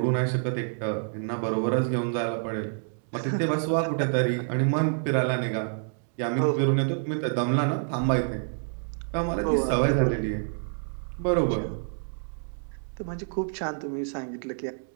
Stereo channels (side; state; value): left; silent; digital silence